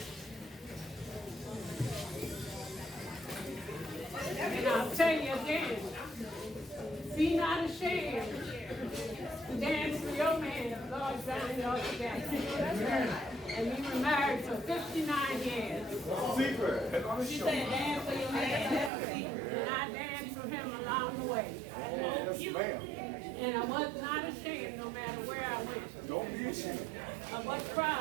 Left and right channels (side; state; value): left; drops out; at 18.9 s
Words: And I'll tell you again, be not ashamed to dance for your man, Lord bound y'all together. And we were married for 59 years. She said dance for your man. And I danced for him along the way. And I was not ashamed no matter where I went. Don't be ashamed. Of what